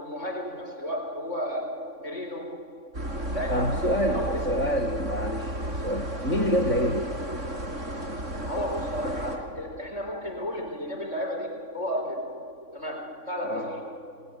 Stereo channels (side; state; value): left; late; 3.6 ms